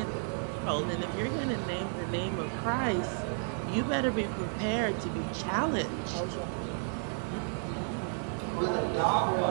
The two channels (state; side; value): silent; left; 56 dB below the other